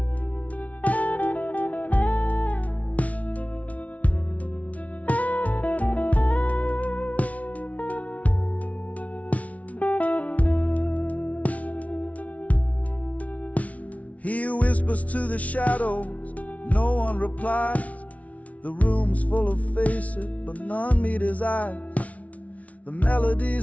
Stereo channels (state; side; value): late; right; 0.067 ms